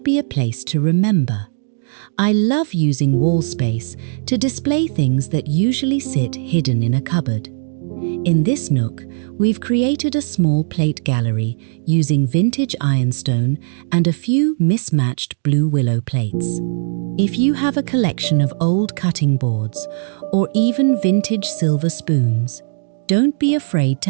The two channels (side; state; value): left; silent; digital silence